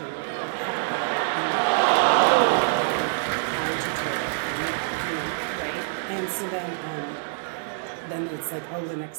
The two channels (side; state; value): left; silent; digital silence